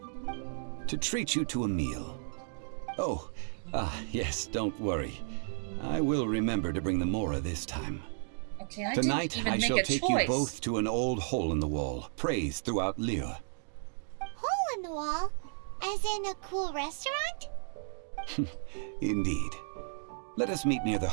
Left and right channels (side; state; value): left; silent; digital silence